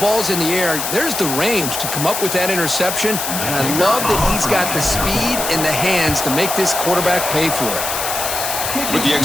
in the air, there's the range to come up with that interception, and I love that he's got the speed in the hands to make this quarterback pay for it. With the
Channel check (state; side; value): noise; left; hiss, 3 dB below the sound